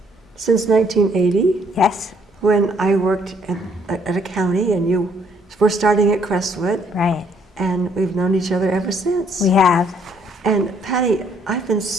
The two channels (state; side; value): normal; both; correlation 0.66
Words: since 1980. Yes. When I worked at a county, and you were starting at Crestwood. Right. And we've known each other ever since. We have. And Patty, I've been